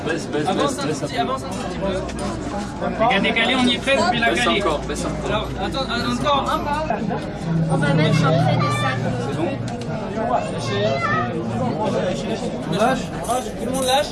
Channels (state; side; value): identical; both; correlation 1.00